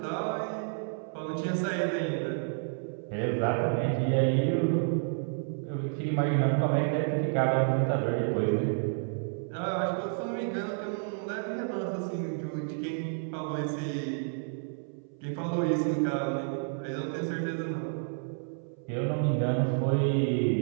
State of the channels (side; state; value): left; silent; 58 dB below the other